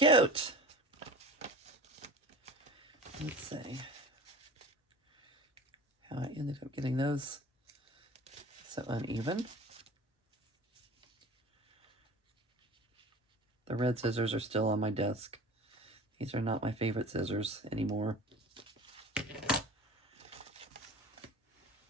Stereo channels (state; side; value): normal; both; correlation 0.38